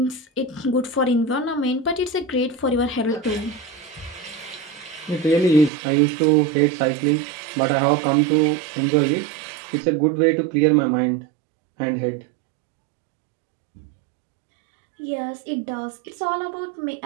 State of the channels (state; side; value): drops out; left; at 5.7 s